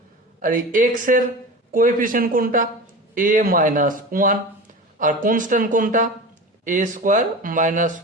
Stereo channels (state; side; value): normal; both; correlation 0.31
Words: আর এই এক্স এর কোএফিসিয়েন্ট কোনটা, a -1, আর কনস্ট্যান্ট কোনটা, a স্কোয়ার